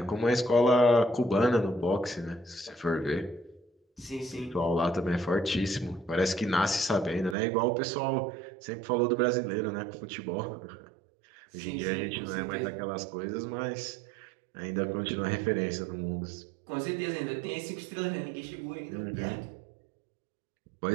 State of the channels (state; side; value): drops out; left; at 7.4 s